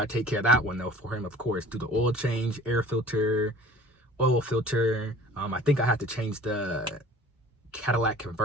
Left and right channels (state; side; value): normal; both; correlation 0.47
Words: I take care of that one though for him, of course. Do the oil change, air filter, oil filter. I think I have to change the Cadillac